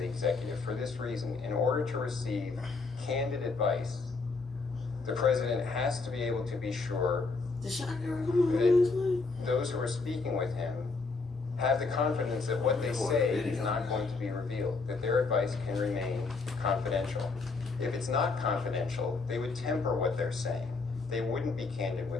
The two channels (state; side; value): quieter; right; 4.1 dB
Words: executive. For this reason, in order to receive candid advice, the president has to be able to be sure that those who are speaking with him have the confidence that what they say is not going to be revealed, that their advice can remain confidential. If it's not confidential, they would temper what they're saying. They wouldn't be candid